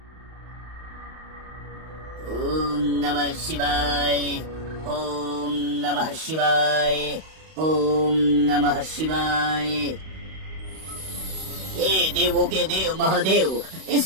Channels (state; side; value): late; left; 32 ms